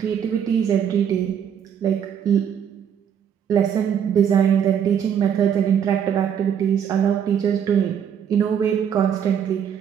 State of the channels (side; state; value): left; quieter; 8.5 dB